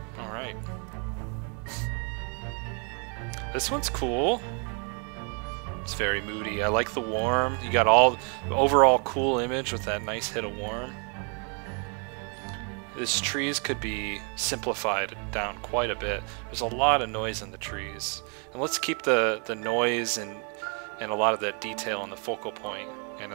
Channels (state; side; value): quieter; left; 37.8 dB